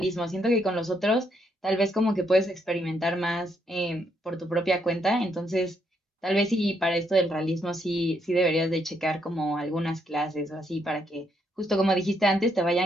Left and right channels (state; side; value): normal; both; correlation 0.75